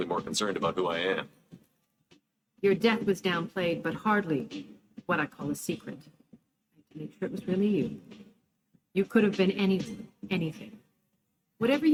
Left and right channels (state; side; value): identical; both; correlation 1.00